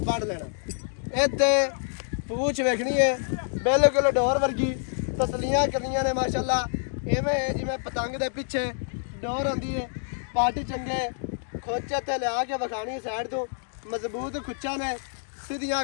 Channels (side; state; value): right; silent; digital silence